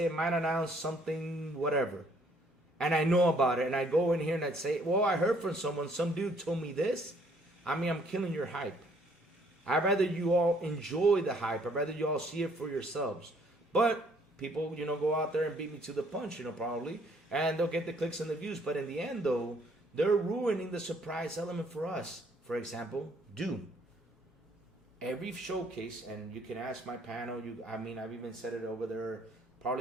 it might announce something, whatever. And I know about it, and I go in here and I'd say, well, I heard from someone, some dude told me this. I mean, I'm killing your hype. I'd rather you all enjoy the hype. I'd rather you all see it for yourselves. But people, you know, go out there and beat me to the punch, you know, probably. And they'll get the clicks and the views. But in the end, though, they're ruining the surprise element for us. For example, Doom. Every showcase, and you can ask my panel, I've even said it over there,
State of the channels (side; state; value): both; normal; correlation 0.63